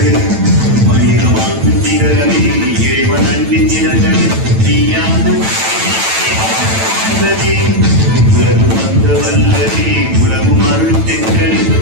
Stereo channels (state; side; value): late; left; 9.0 ms